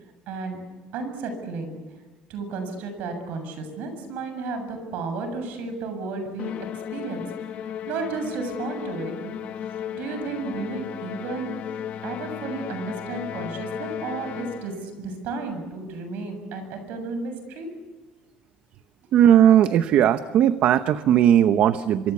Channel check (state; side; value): quieter; left; 7.5 dB